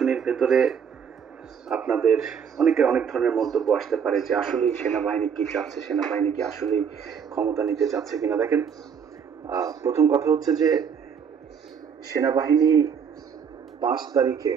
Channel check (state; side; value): quieter; left; 7.1 dB